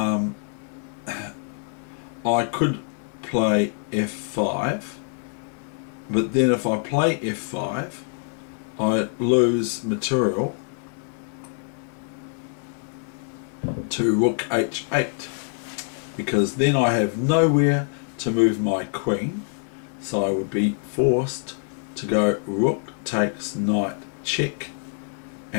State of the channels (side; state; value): right; silent; 56 dB below the other